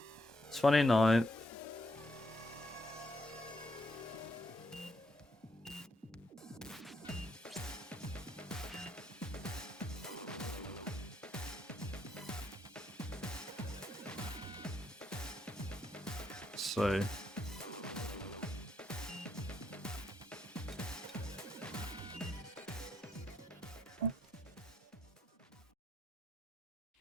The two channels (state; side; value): normal; both; correlation 0.76